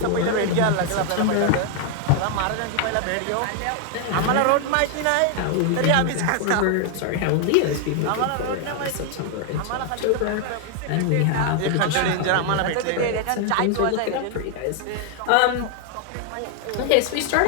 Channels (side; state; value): both; different; correlation 0.00